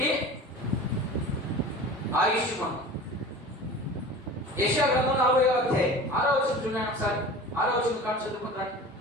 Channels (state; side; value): normal; both; correlation 0.38